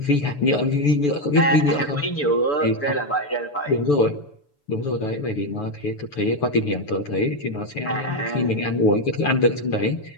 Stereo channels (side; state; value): right; late; 6.9 ms